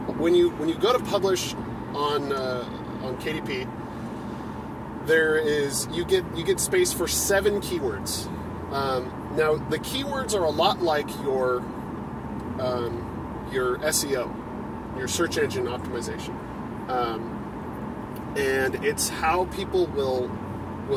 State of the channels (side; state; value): both; identical; correlation 1.00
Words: When you go to publish on KDP, you get space for 7 keywords. Now, the keywords are a lot like your SEO, your search engine optimization, and it's how people